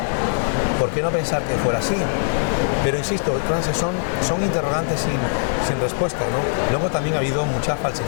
¿Por qué no pensar que fuera así? Pero insisto, Francis, son interrogantes sin respuesta, ¿no? Luego también ha habido mucha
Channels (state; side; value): silent; right; 65 dB below the other